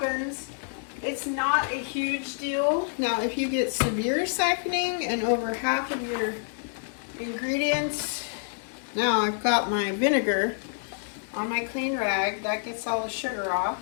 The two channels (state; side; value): silent; right; digital silence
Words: it's not a huge deal. Now, if you get severe siphoning and over half of your ingredients, now I've got my vinegar on my clean rag, that gets all the sugar off.